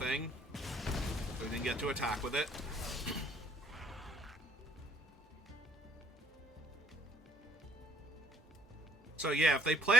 So we didn't get to attack with it. So yeah, if they play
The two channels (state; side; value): normal; both; correlation 0.64